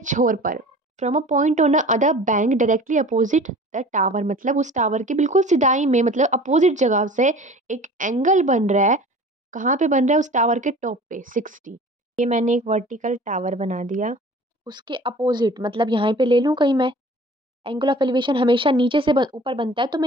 पर। From a point on a other bank directly opposite the tower, मतलब उस टावर के बिल्कुल सिधाई में, मतलब अपोजिट जगह से एक एंगल बन रहा है। कहाँ पे बन रहा है? उस टावर के टॉप पे 60। ये मैंने एक वर्टिकल टावर बना दिया। उसके अपोजिट मतलब यहाँ पे ले लूँ कहीं मैं। एंगल ऑफ एलिवेशन हमेशा नीचे से ऊपर बनता है, तो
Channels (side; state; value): both; normal; correlation 0.44